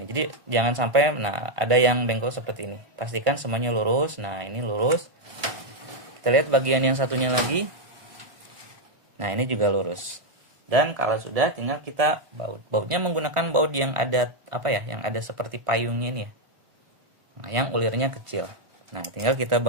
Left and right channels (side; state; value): left; late; 1.5 ms